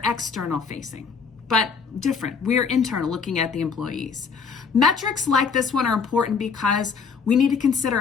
external facing. but different. We're internal, looking at the employees. Metrics like this one are important because we need to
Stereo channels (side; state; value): right; quieter; 5.6 dB